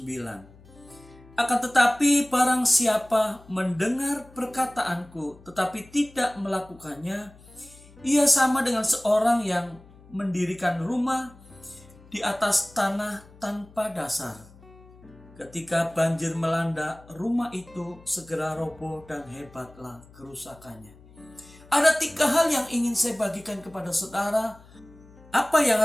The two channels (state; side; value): noise; left; hum, 24 dB below the sound